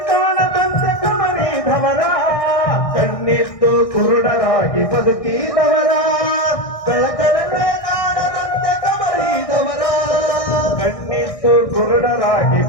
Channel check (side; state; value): right; late; 1.6 ms